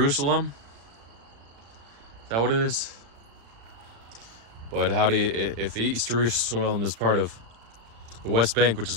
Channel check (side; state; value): left; late; 35 ms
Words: Is that what it is? But how do you, if East Jerusalem is part of the West Bank, which is